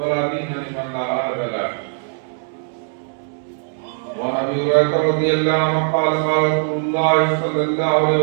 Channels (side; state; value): left; silent; 66 dB below the other